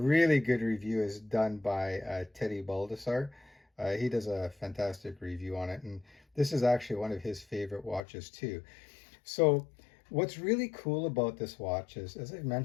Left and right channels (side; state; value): right; drops out; at 8.0 s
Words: good review is done by Teddy Baldessar. He does a fantastic review on it, and this is actually one of his favorite watches too. So what's really cool about this watch is, as I've